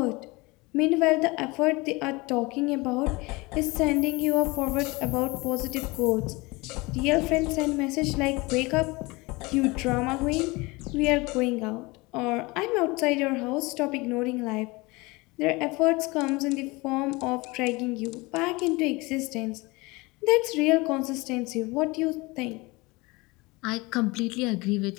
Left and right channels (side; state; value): right; quieter; 24.1 dB